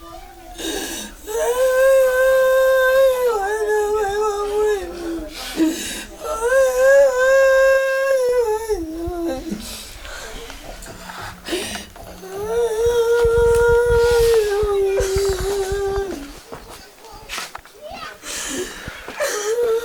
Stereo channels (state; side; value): identical; both; correlation 1.00